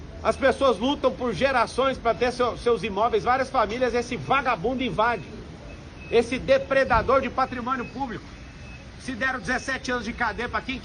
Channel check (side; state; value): both; identical; correlation 1.00